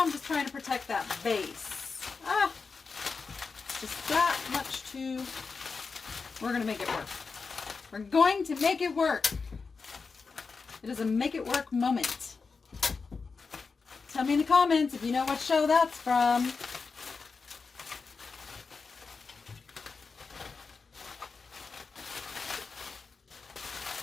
I'm just trying to protect that base. Just that much too. We're going to make it work. We're going to make it work. It is a make it work moment. Tell me in the comments if you know what show that's from.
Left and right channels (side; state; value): right; quieter; 4.8 dB